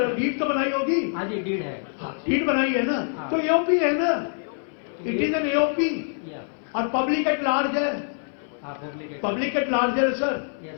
डीड तो बनाई होगी। हाँ जी, डीड है। डीड बनाई है ना, तो एओपी है ना, इट इज एन एओपी और पब्लिक एट लार्ज है। पब्लिक एट लार्ज है सर,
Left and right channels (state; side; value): silent; right; 58 dB below the other